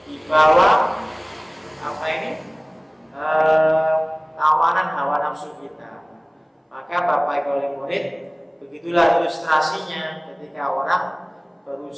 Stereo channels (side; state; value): both; identical; correlation 1.00